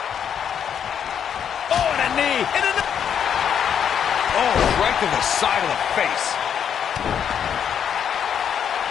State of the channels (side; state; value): right; quieter; 8.3 dB